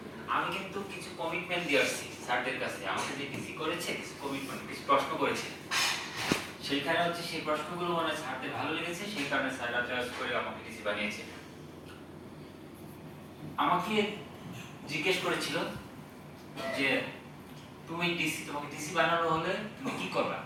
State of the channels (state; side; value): identical; both; correlation 1.00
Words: আমি কিন্তু কিছু কমিটমেন্ট দিয়ে আসছি স্যারদের কাছে। আমাকে যে ডিসি করেছে কিছু কমিটমেন্ট, কিছু প্রশ্ন করেছে, সেইখানে হচ্ছে সেই প্রশ্নগুলো মানে স্যারদের ভালো লেগেছে, সেই কারণে স্যাররা চয়েস করে আমাকে ডিসি বানিয়েছে। আমাকে জিজ্ঞেস করেছিল যে তুমি ডিসি, তোমাকে ডিসি বানানো হলে তুমি কি করবা?